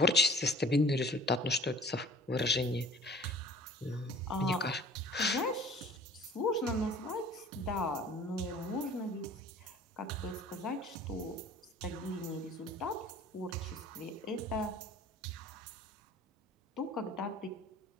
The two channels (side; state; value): both; normal; correlation 0.48